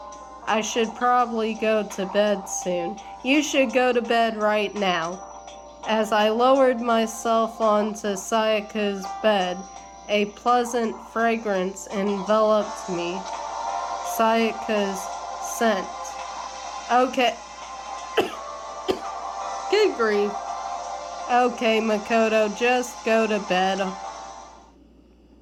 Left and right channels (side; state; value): both; identical; correlation 1.00